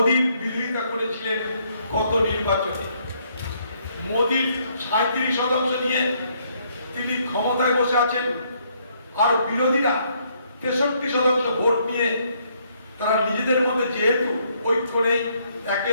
বিরোধিতা করেছিলেন গত নির্বাচনে। মোদীর 37% নিয়ে তিনি ক্ষমতায় বসে আছেন, আর বিরোধীরা 63% ভোট নিয়ে তারা নিজেদের মধ্যে যেহেতু ঐক্য নেই, একে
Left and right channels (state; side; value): inverted; both; correlation -0.70